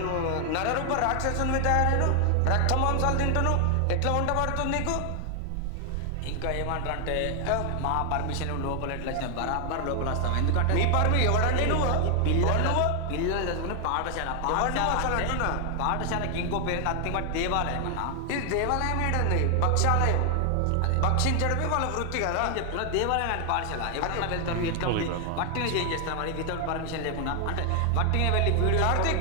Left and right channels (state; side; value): different; both; correlation 0.00